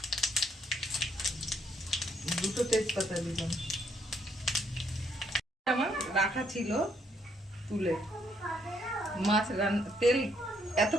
দুটো তেজপাতা দিলাম। আমার রাখা ছিল তুলে, মাছ তেল এত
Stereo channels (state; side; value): normal; both; correlation 0.71